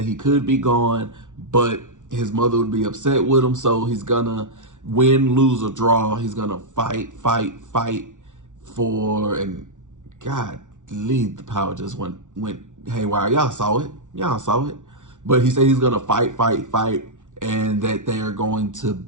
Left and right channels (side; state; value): left; late; 0.87 ms